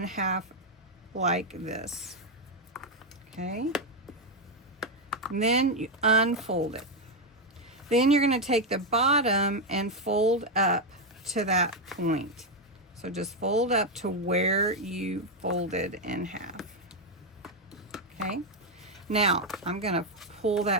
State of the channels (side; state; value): both; normal; correlation 0.04